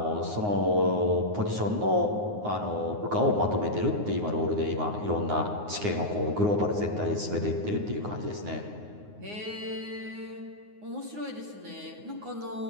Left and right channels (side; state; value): left; late; 9.6 ms